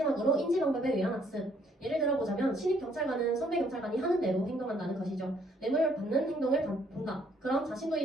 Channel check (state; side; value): normal; both; correlation 0.66